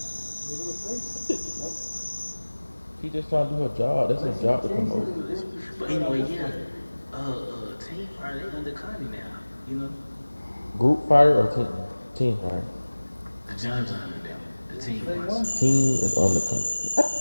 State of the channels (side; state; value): both; inverted; correlation -1.00